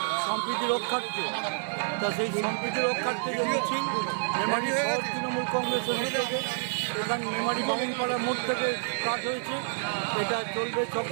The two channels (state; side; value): silent; left; digital silence